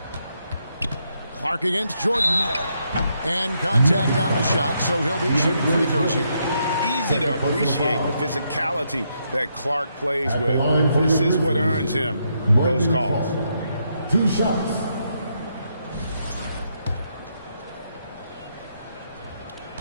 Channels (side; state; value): both; inverted; correlation -0.78